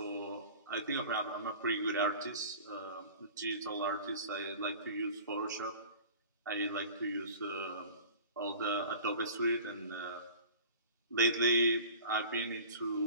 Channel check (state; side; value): inverted; both; correlation -0.41